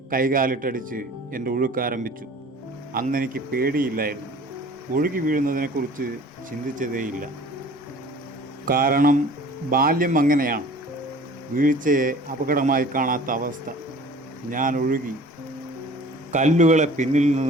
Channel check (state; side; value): normal; both; correlation 0.47